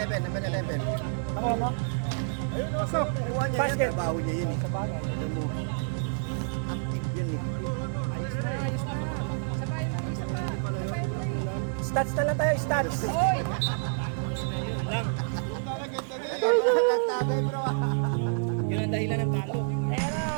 11. Nakuha mo? Pasok. Basket. Trabaho niya yun eh. Sa bagay. Active yun eh. Stats na lang tayo, stats. Nagtagay bro. Yun ang dahilan ng talo.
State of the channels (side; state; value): left; silent; 59 dB below the other